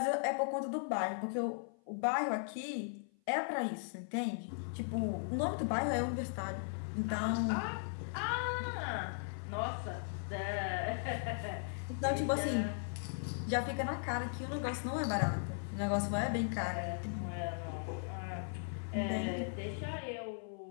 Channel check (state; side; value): silent; right; 53 dB below the other